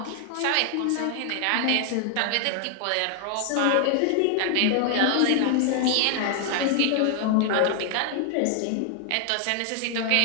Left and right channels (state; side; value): different; both; correlation 0.00